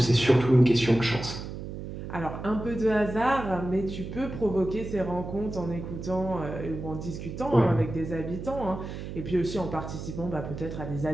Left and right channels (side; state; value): right; noise; hum, 8 dB below the sound